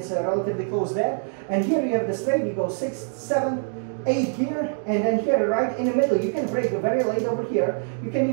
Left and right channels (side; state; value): left; silent; 62 dB below the other